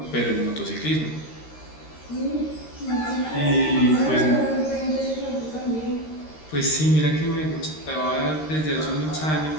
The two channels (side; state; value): right; late; 13 ms